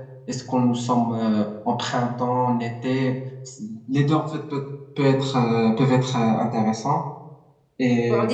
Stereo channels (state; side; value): identical; both; correlation 1.00